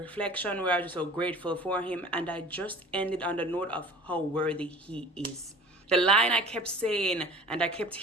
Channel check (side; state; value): both; normal; correlation 0.43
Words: where I was just so grateful for him. And I just ended on the note of how worthy he is. The line I kept saying and I kept